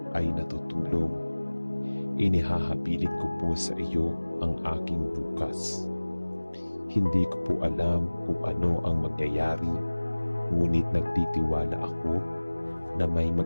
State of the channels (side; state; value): both; inverted; correlation -1.00